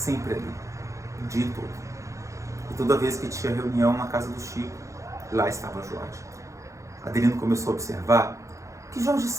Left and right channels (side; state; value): left; late; 0.15 ms